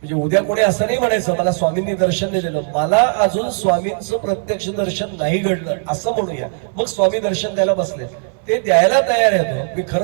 उद्या कोणी असं नाही म्हणायचं मला स्वामींनी दर्शन नाही दिलं, मला अजून स्वामींचं प्रत्यक्ष दर्शन नाही घडलं असं म्हणूया. मग स्वामी दर्शन द्यायला बसले. ते द्यायला तयार आहे. मी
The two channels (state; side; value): silent; left; 58 dB below the other